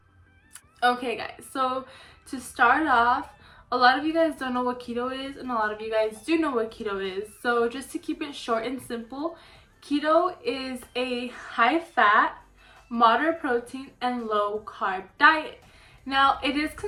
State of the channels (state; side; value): identical; both; correlation 1.00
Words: Okay guys, so to start off, a lot of you guys don't know what keto is and a lot of you guys do know what keto is. So just to keep it short and simple, keto is a high fat, moderate protein and low carb diet. Now it is